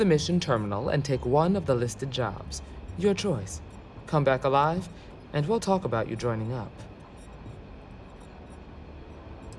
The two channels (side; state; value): both; identical; correlation 1.00